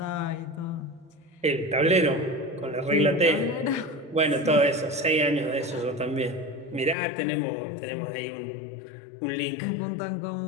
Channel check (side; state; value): right; drops out; at 7.0 s